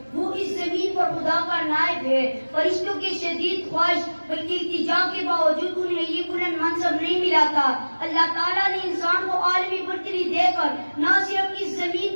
وہ اس زمین پر خدا کا نائب ہے۔ فرشتوں کی شدید خواہش بلکہ التجا کے باوجود انہیں یہ بلند منصب نہیں ملا تھا۔ اللہ تعالیٰ نے انسان کو عالمی برتری دے کر نہ صرف اس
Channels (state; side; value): inverted; both; correlation -1.00